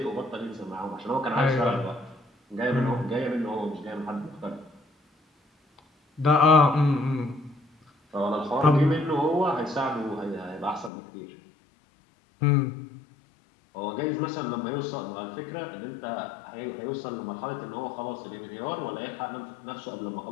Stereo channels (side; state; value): right; drops out; at 10.9 s